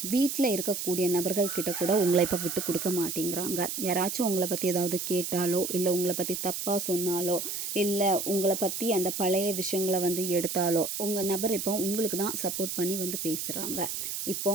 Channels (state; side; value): noise; right; hiss, 4 dB below the sound